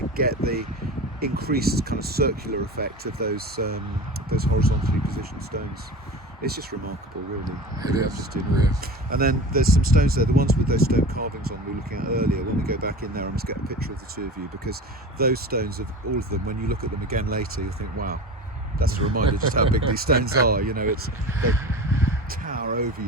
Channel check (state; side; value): normal; both; correlation 0.33